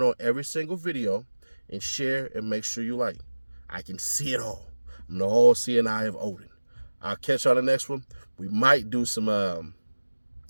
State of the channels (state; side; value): inverted; both; correlation -1.00